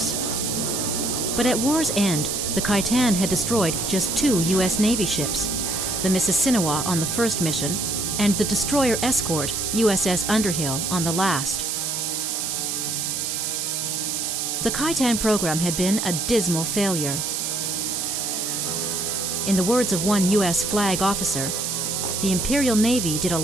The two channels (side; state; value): right; noise; hiss, 1 dB below the sound